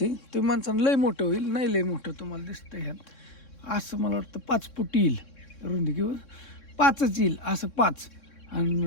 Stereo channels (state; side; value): late; right; 3.6 ms